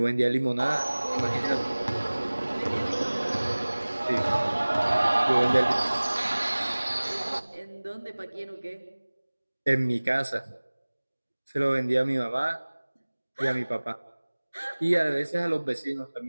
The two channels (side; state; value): both; inverted; correlation -1.00